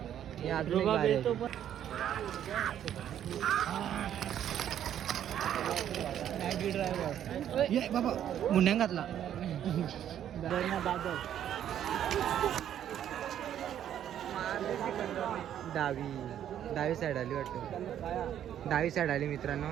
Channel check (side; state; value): left; quieter; 10.4 dB